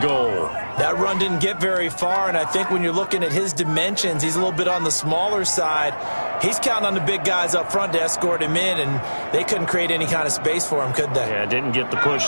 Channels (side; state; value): both; inverted; correlation -1.00